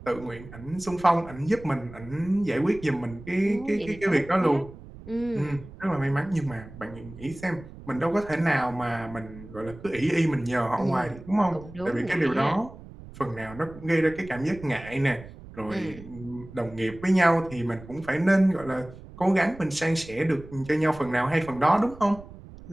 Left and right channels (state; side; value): noise; right; rumble, 17 dB below the sound